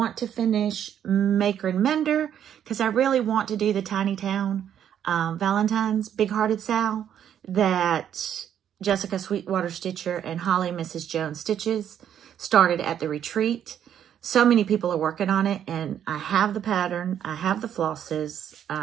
to finish Maker and Mender because I really want to do the Tiny Town Valentine's Big Hearted Sal that Jessica Sweetwater Stitcher and Holly Mrs. Jones Stitches started at the retreat. So many people are working on it, and I have the pattern. I have the flosses.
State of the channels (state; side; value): quieter; left; 9.6 dB